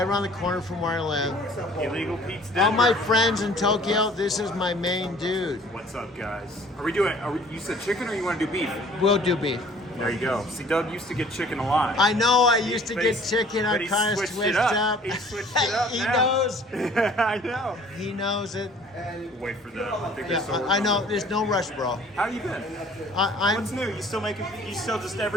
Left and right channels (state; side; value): normal; both; correlation 0.52